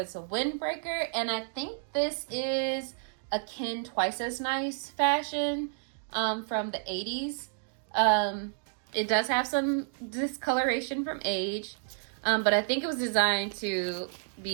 a windbreaker, and I think this is a Ken Twice as Nice fashion from the 80s. It does have some discoloration from age, but I think it was designed to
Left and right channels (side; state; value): left; silent; digital silence